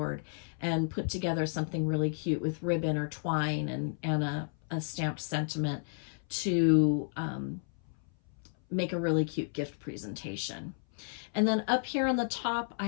and put together something really cute with ribbon or twine and a stamped sentiment to make a really cute gift presentation. And then up here on the top,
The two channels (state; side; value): silent; right; 56 dB below the other